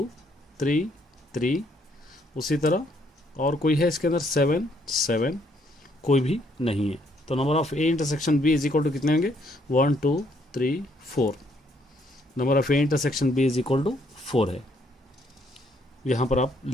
3 3, उसी तरह और कोई है इसके अंदर 7 7, कोई भी नहीं है, तो number of A intersection B is equal to कितने होंगे 1 2 3 4, number of A intersection B is equal to 4 है, यहाँ पर आप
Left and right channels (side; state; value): both; normal; correlation 0.69